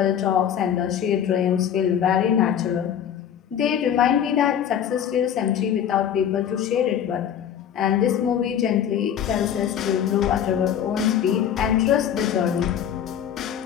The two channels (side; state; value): right; quieter; 9.2 dB